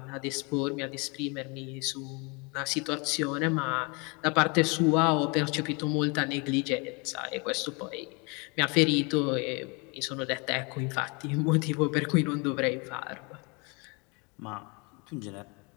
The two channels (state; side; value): quieter; right; 30.6 dB